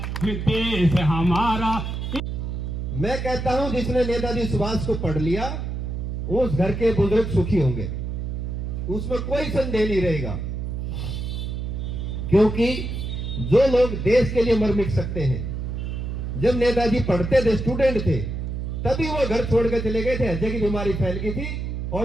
ये देश हमारा। मैं कहता हूं जिसने नेताजी सुभाष को पढ़ लिया उस घर के बुजुर्ग सुखी होंगे, उसमें कोई संदेह नहीं रहेगा। क्योंकि जो लोग देश के लिए मर मिट सकते हैं, जब नेताजी पढ़ते थे, स्टूडेंट थे, तभी वो घर छोड़ कर चले गए थे। हृदय की बीमारी फैल गई थी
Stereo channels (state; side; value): noise; right; hum, 4 dB below the sound